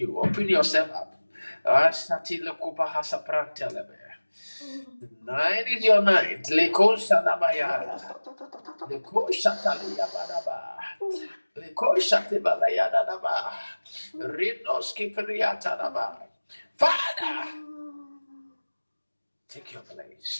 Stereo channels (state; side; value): inverted; both; correlation -1.00